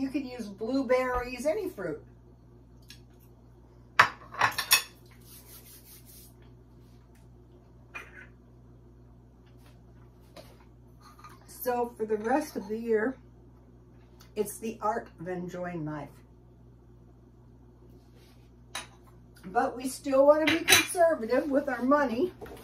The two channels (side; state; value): both; identical; correlation 1.00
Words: can use blueberries, any fruit. So for the rest of the year, it's the art of enjoying life. But we still want to be conservative with our money.